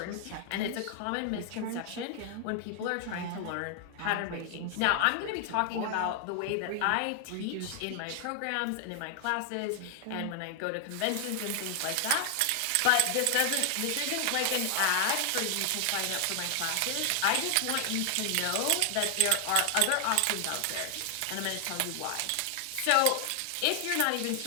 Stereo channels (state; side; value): different; both; correlation 0.00